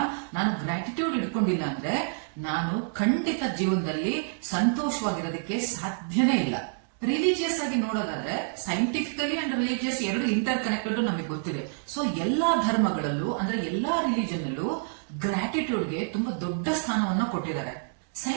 ನಾನು ಗ್ರಾಟಿಟ್ಯೂಡ್ ಇಟ್ಕೊಂಡಿಲ್ಲ ಅಂದ್ರೆ ನಾನು ಖಂಡಿತ ಜೀವನದಲ್ಲಿ ಸಂತೋಷವಾಗಿರೋದಕ್ಕೆ ಸಾಧ್ಯನೇ ಇಲ್ಲ. ರಿಲಿಜಿಯಸ್ ಆಗಿ ನೋಡೋದಾದ್ರೆ ಸೈಂಟಿಫಿಕಲಿ ಅಂಡ್ ರಿಲಿಜಿಯಸ್ ಎರಡು ಇಂಟರ್ ಕನೆಕ್ಟೆಡ್ ನಮಗೆ ಗೊತ್ತಿದೆ. ಸೊ ಎಲ್ಲಾ ಧರ್ಮಗಳಲ್ಲೂ ಅಂದ್ರೆ ಎಲ್ಲಾ ರಿಲಿಜನ್ ಅಲ್ಲೂ ಗ್ರಾಟಿಟ್ಯೂಡ್ಗೆ ತುಂಬಾ ದೊಡ್ಡ ಸ್ಥಾನವನ್ನ ಕೊಟ್ಟಿದ್ದಾರೆ.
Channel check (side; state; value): left; silent; digital silence